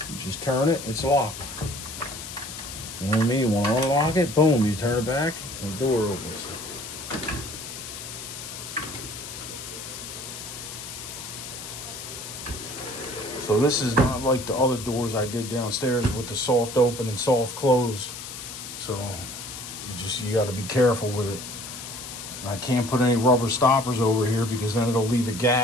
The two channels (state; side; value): noise; left; hiss, 10 dB below the sound